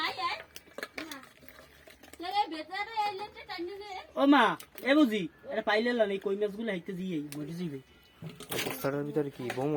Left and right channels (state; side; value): identical; both; correlation 1.00